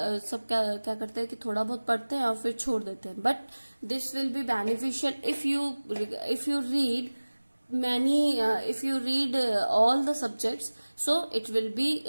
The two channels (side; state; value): both; inverted; correlation -1.00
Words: करते हैं कि थोड़ा बहुत पढ़ते हैं और फिर छोड़ देते हैं. But this will be beneficial if you read if you read all the subjects, so it will be